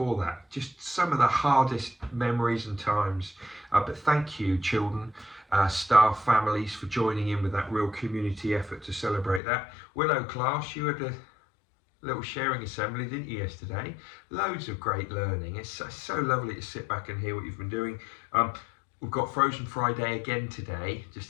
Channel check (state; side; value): drops out; right; at 9.4 s